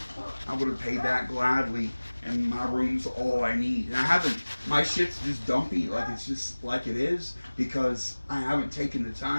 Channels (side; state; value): both; inverted; correlation -1.00